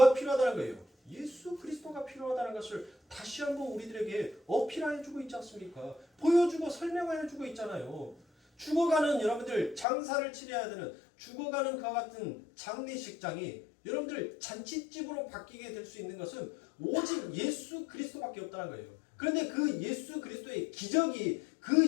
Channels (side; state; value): right; drops out; at 9.9 s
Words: 필요하다는 거예요? 예수 그리스도가 필요하다는 것을 다시 한번 우리들에게 어필해주고 있지 않습니까? 보여주고 설명해주고 있잖아요. 죽어가는 여러분들 장사를 치러야 되는 죽어가는 그와 같은 장례식장이 여러분들 잔치집으로 바뀌게 될 수 있는 것은 오직 예수 그리스도밖에 없다는 거예요. 그런데 그 예수 그리스도의 기적이 그